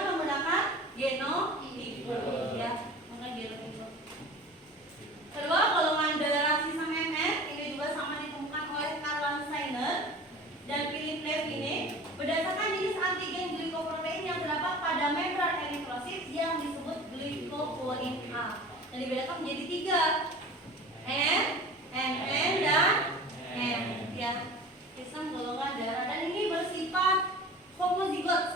menggunakan genotipe. Ya, menggunakan genotipe. Kedua, golongan darah sistem MN ini juga sama ditemukan oleh Karl Steiner dan Philip Levine berdasarkan jenis antigen glikoprotein yang terdapat pada membran eritrosit yang disebut glikoprotein A. Dan dibedakan menjadi 3, N, MN, dan M. Ya, sistem golongan darah, dan ini bersifat homozigot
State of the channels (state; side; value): normal; both; correlation 0.39